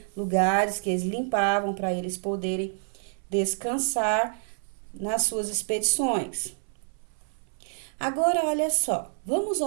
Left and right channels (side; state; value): left; silent; 60 dB below the other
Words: lugares que eles limpavam para eles poderem descansar nas suas expedições. Agora, olha só, vamos